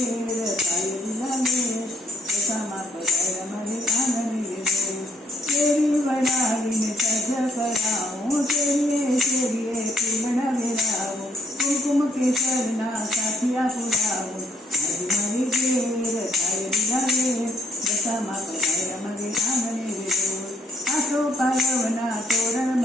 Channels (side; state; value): both; normal; correlation 0.67